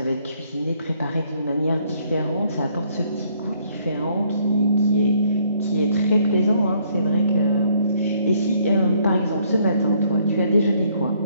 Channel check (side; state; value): both; inverted; correlation -0.66